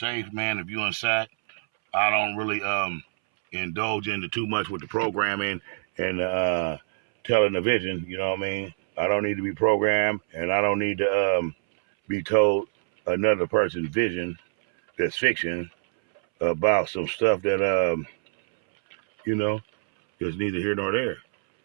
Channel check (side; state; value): left; silent; 62 dB below the other